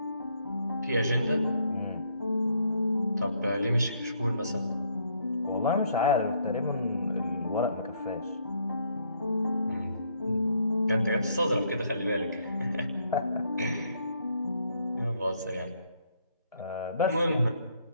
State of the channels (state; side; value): inverted; both; correlation -0.69